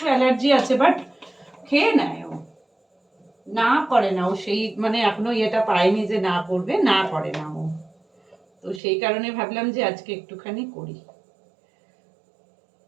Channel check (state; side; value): drops out; left; at 8.8 s